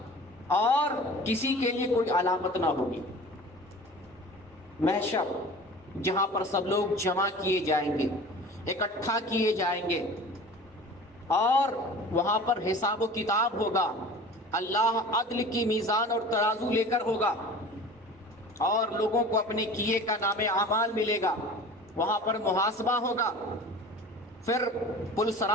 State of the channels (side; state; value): both; normal; correlation 0.40